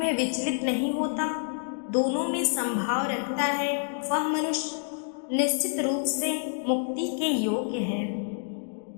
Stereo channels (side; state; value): right; silent; 59 dB below the other